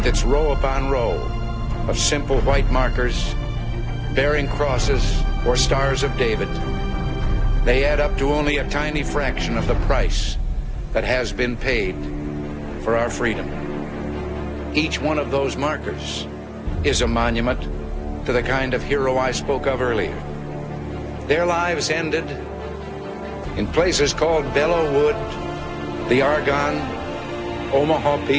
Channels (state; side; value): identical; both; correlation 1.00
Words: its row upon row of simple white markers bearing crosses or stars of David, they add up to only a tiny fraction of the price that has been paid for our freedom. Each one of those markers is a monument to the kind of hero I spoke of earlier. Their lives ended in places called Belleau Wood, the Argonne, Omaha